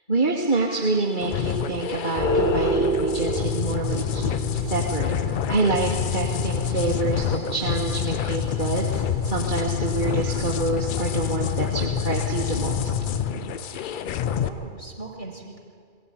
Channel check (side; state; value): right; late; 2.3 ms